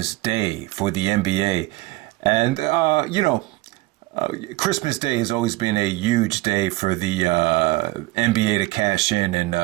Day for the NBA. And, Christmas Day has always been a huge day for the NBA to cash in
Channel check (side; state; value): left; quieter; 19.7 dB